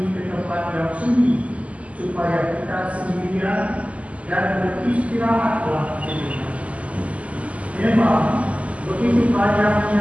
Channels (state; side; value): late; left; 0.066 ms